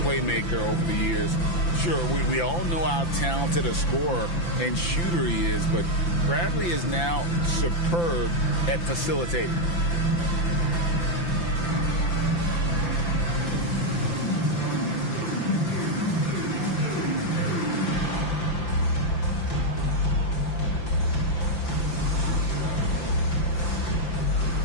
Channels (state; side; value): late; right; 5.9 ms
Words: playmaker over the years. Sure, we all know how talented a scorer and shooter he is, but Bradley is now superb at facilitating.